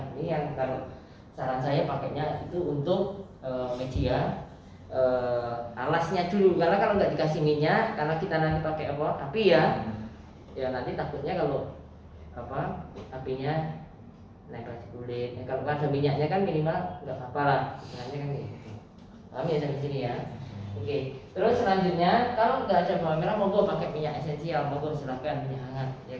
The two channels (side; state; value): both; identical; correlation 1.00